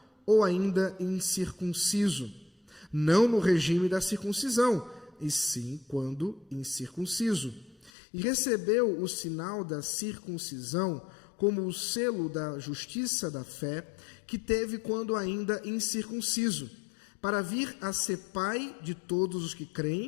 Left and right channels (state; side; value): drops out; right; at 7.9 s